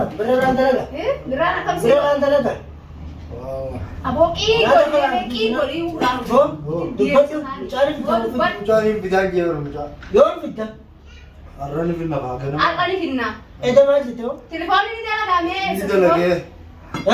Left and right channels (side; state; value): both; identical; correlation 1.00